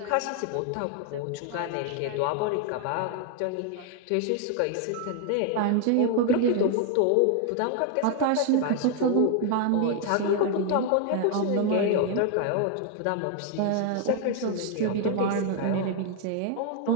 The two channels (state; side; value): different; both; correlation 0.00